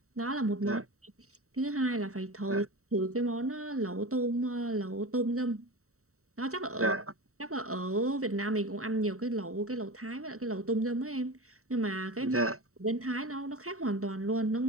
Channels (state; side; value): late; left; 0.64 ms